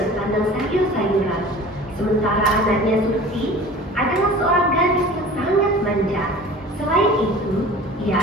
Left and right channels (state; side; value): normal; both; correlation 0.42